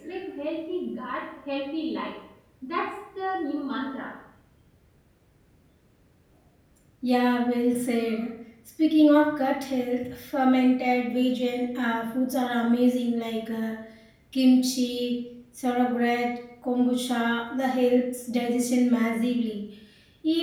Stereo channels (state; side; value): identical; both; correlation 1.00